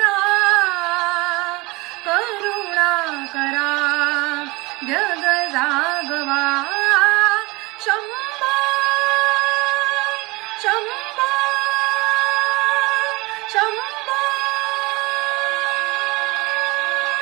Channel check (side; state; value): left; quieter; 24.0 dB